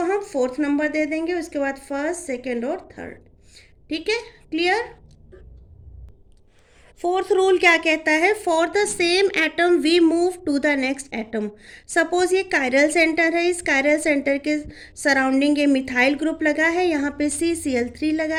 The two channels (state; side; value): identical; both; correlation 1.00